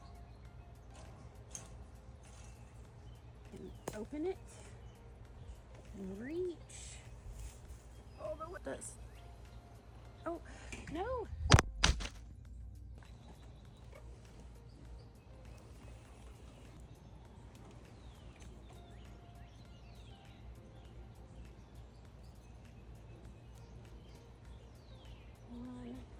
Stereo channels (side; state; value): both; identical; correlation 1.00